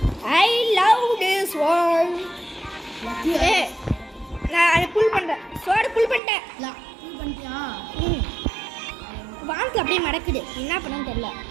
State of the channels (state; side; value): drops out; left; at 6.2 s